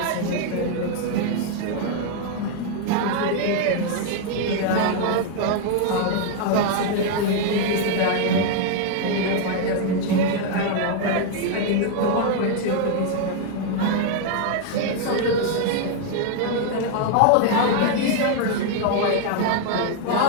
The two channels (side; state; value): both; different; correlation 0.00